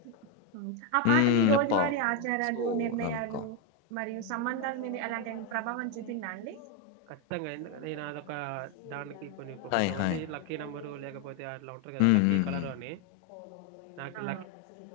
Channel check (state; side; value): different; both; correlation 0.02